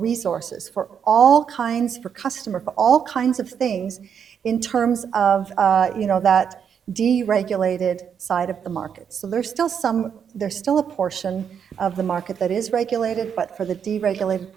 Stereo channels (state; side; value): quieter; left; 7.6 dB